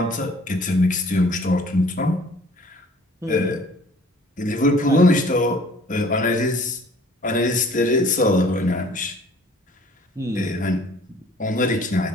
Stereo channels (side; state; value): both; normal; correlation 0.53